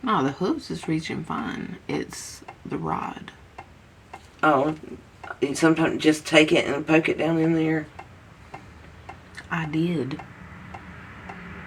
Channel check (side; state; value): both; identical; correlation 1.00